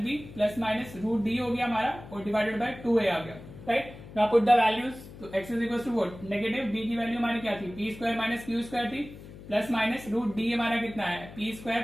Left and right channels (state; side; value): noise; left; hum, 16 dB below the sound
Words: plus minus root d हो गया हमारा, और डिवाइडेड बाय 2a आ गया, right. Now put the values, तो x is equal to what, negative b की वैल्यू हमारी क्या थी, p square minus Q square थी, प्लस माइनस रूट डी हमारा कितना है, p square